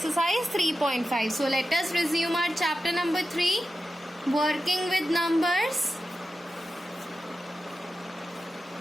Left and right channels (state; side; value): normal; both; correlation 0.92